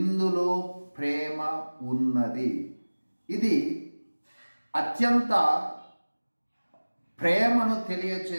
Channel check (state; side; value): inverted; both; correlation -1.00